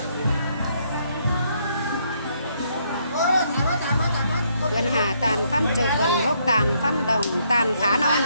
Vườn hà tàn phân trục vườn gốc tàn phân đồng tàn khá non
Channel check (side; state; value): both; inverted; correlation -0.72